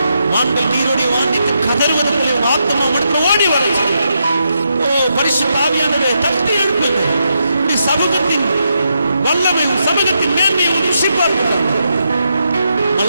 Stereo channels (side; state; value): both; inverted; correlation -0.82